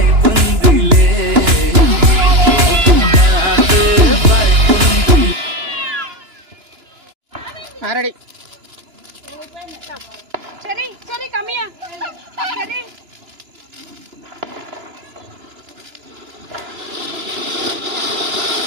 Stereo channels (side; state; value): left; late; 2.9 ms